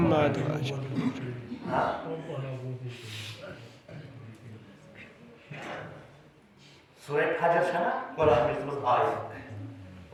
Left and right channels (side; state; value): both; identical; correlation 1.00